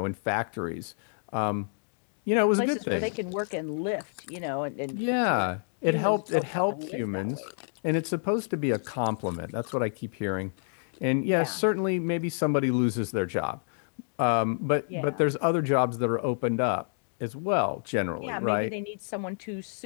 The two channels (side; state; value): right; silent; digital silence